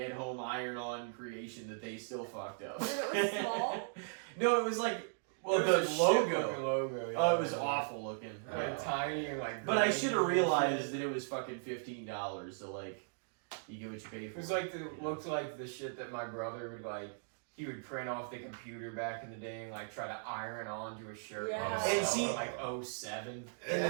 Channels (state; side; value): silent; left; digital silence